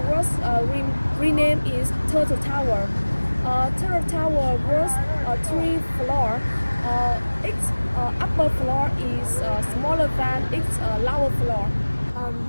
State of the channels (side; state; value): both; inverted; correlation -1.00